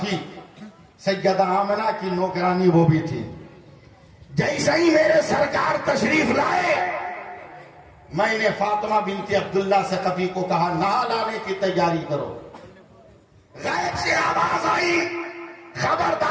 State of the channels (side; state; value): both; identical; correlation 1.00